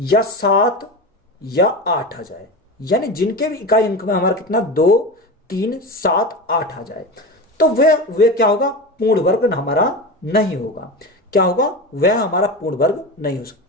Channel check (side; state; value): both; normal; correlation 0.25